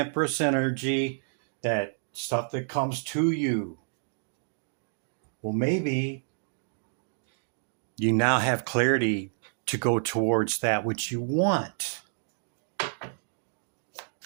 energy, that stuff that comes to you. Well, maybe you now have clarity to go towards that which you want.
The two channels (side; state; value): left; silent; digital silence